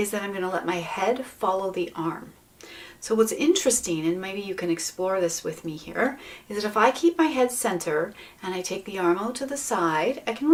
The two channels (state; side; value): identical; both; correlation 1.00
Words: that I'm going to let my head follow the arm. So what's interesting, and maybe you can explore this with me here, is that if I keep my head center and I take the arm out to the side, I can